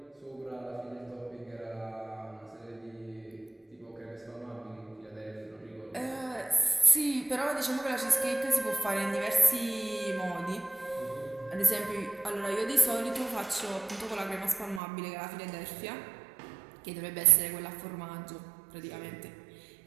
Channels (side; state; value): left; drops out; at 14.8 s